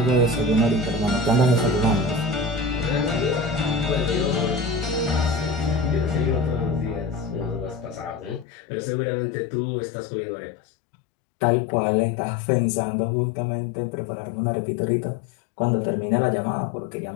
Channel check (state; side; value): drops out; right; at 8.5 s